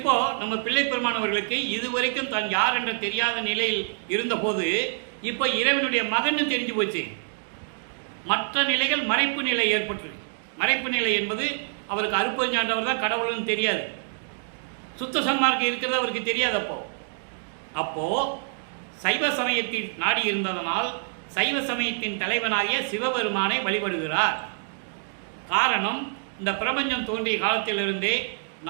நம்ம பிள்ளைப்பெருமானவர்களுக்கு இதுவரைக்கும் தான் யார் என்ற தெரியாத நிலையில் இருந்தபோது இப்போ இறைவனுடைய மகன் தெரிஞ்சு போச்சு. மற்ற நிலைகள் மறைப்பு நிலை ஏற்பட்டிருக்கு. மறைப்பு நிலை என்பது அவருக்கு அருட்பெருஞ்சாண்டவர் தான் கடவுள்னு தெரியாது. சுத்த சன்மார்க்கம் இருக்கிறது அவருக்கு தெரியாது. அப்போ சைவ சமயத்தில் நாடி இருந்ததனால் சைவ சமயத்தின் தலைவனாகிய சிவபெருமானை வழிபடுகிறார். காரணம், இந்த பிரபஞ்சம் தோன்றிய காலத்திலிருந்தே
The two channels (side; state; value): left; silent; digital silence